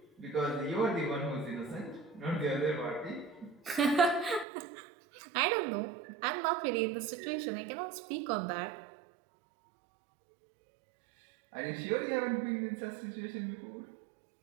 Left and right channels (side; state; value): left; drops out; at 4.5 s